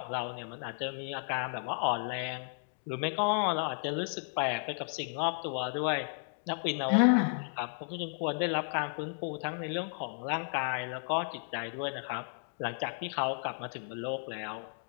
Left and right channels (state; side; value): silent; right; 55 dB below the other